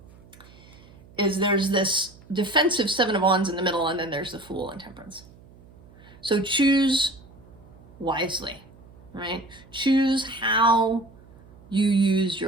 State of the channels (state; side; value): noise; right; hum, 23 dB below the sound